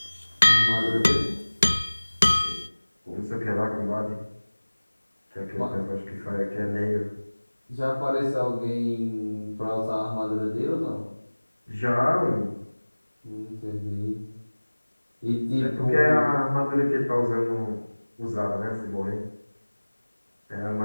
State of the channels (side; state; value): both; inverted; correlation -1.00